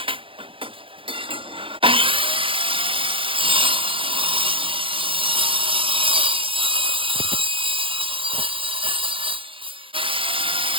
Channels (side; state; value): left; late; 0.25 ms